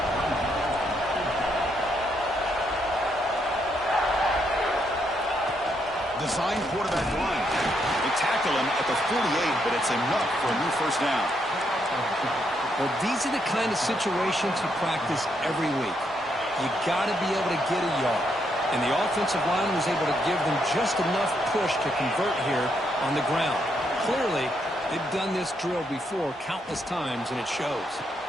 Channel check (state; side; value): normal; both; correlation 0.77